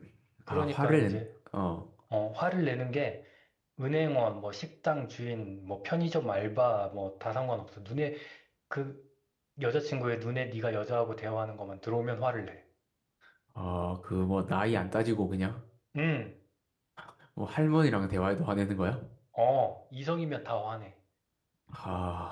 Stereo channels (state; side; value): identical; both; correlation 1.00